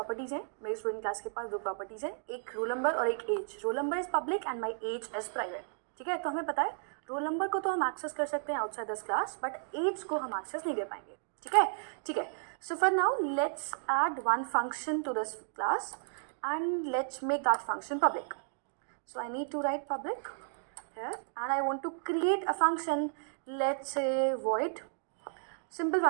हैं. मेरे स्टूडेंट क्लास के पास दो प्रॉपर्टीज़ हैं, एक रोल नंबर और एक age. Roll number is public and my age is private. ठीक है, तो हमें पता है रोल नंबर को तो हम एक्सेस कर सकते हैं outside this class, but age को हम एक्सेस नहीं कर पाएंगे. ठीक है, ठीक है. So for now let's add one function to this class and let's make that function public. So I need to write public here and I want to create a function, let's say void, simple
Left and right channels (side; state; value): left; silent; digital silence